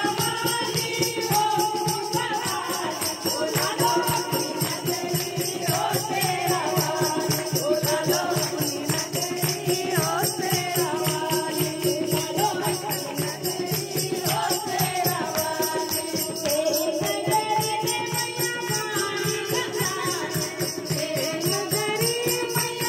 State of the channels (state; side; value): identical; both; correlation 1.00